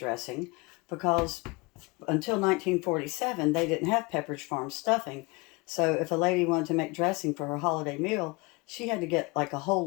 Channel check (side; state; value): right; quieter; 26.7 dB